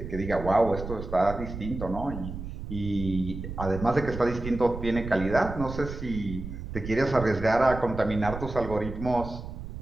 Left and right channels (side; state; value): right; noise; rumble, 8 dB below the sound